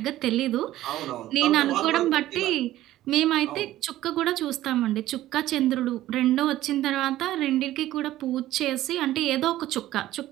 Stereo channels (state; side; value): quieter; left; 14.6 dB